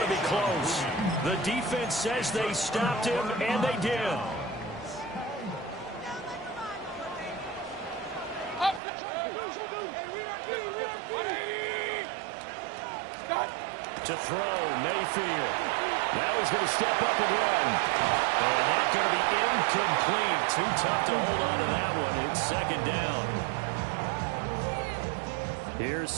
to be close. The defense says they stopped him, and they did. To throw, Mayfield. Now he's going to step up and run. And that's going to be incomplete. Too tough to hold on to that one. It's second down. Here's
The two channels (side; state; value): left; drops out; at 8.8 s